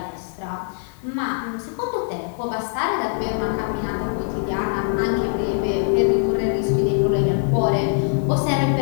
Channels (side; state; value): right; silent; 64 dB below the other